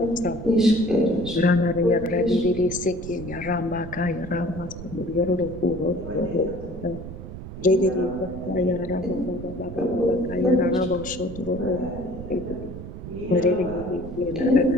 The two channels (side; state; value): right; noise; rumble, 11 dB below the sound